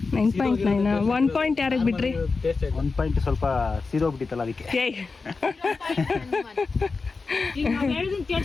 9.9. 1 ಪಾಯಿಂಟ್ ಯಾರಿಗೆ ಬಿಟ್ರಿ? 1 ಪಾಯಿಂಟ್ ಸ್ವಲ್ಪ ಸೀದೋಗ್ಬಿಟ್ಟಿತ್ತಲ್ಲ ಅದಕ್ಕೆ. ಹೇಳಿದೀನಿ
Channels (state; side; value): quieter; right; 4.3 dB